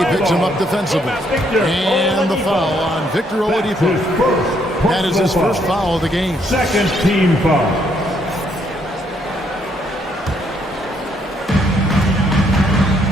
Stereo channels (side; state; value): both; normal; correlation 0.71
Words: picks him up defensively. And the foul on Victor Oladipo. That is his first foul of the game. Second team foul.